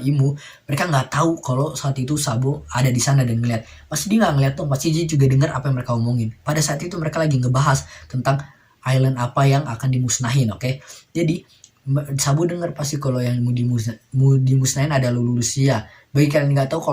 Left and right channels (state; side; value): identical; both; correlation 1.00